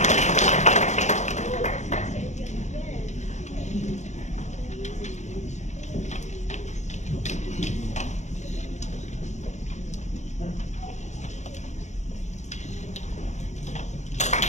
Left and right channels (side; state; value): right; late; 0.34 ms